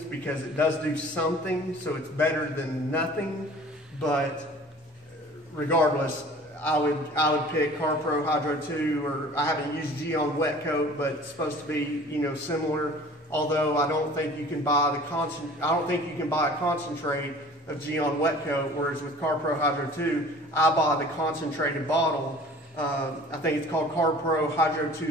because it does do something, so it's better than nothing. But regardless, I would pick CarPro Hydro 2, or I haven't used Geon Wet Coat, but it's supposed to be, you know, similar. Although I don't think you can buy a concentrate of Geon Wet Coat, whereas with CarPro Hydro 2, I buy the concentrated bottle. I think it's called CarPro Hydro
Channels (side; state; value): both; normal; correlation 0.46